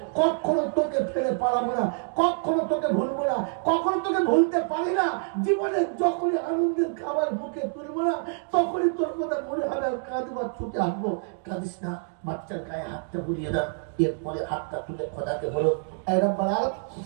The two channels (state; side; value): silent; left; 60 dB below the other